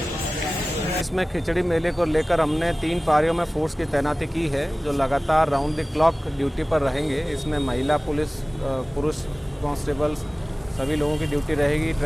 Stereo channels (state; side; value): normal; both; correlation 0.98